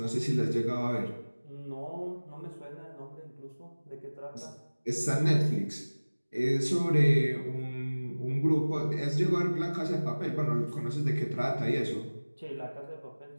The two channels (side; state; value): both; inverted; correlation -1.00